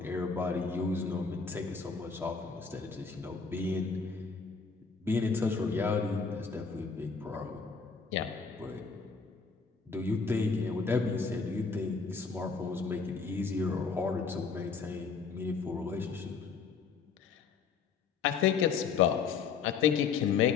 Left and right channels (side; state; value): right; quieter; 5.4 dB